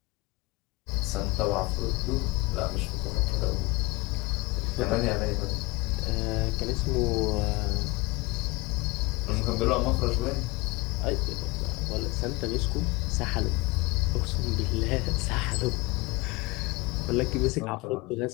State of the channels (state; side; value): quieter; right; 23.7 dB